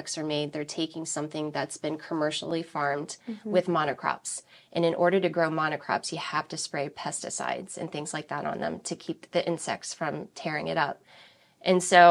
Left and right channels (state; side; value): identical; both; correlation 1.00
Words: are made, they're taking something that's been commercially farmed with monocrops. And in order to grow monocrops, you have to spray pesticides and things like that on them to keep the insects from tearing it up. And